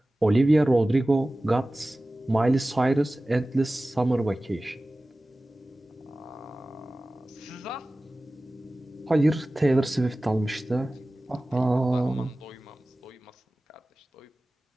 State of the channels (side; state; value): both; normal; correlation 0.97